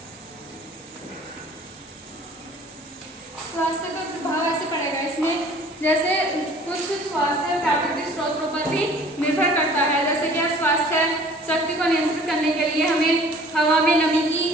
स्वास्थ्य पर प्रभाव ऐसे पड़ेगा इसमें, जैसे कुछ स्वास्थ्य प्राकृतिक स्रोतों पर भी निर्भर करता है। जैसे कि स्वास्थ्य शक्ति को नियंत्रित करने के लिए हमें हवा में नमी की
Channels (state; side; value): normal; both; correlation 0.50